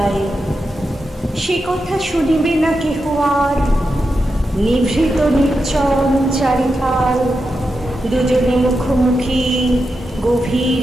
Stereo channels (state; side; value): normal; both; correlation 0.88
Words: সে কথা শুনিবে না কেহ আর, নিভৃত নির্জন চারিধার। দুজনে মুখোমুখি গভীর